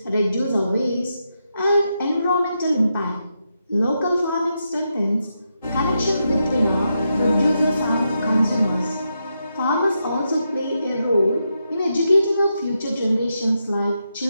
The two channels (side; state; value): both; inverted; correlation -0.84